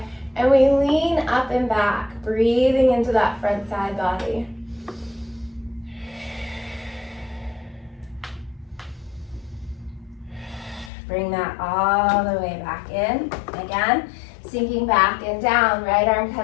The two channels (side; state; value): right; drops out; at 10.9 s